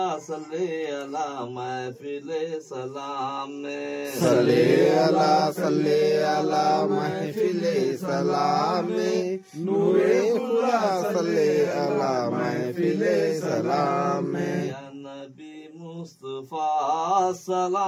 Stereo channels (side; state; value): both; identical; correlation 1.00